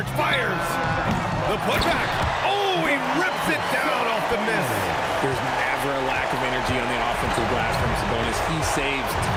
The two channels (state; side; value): identical; both; correlation 1.00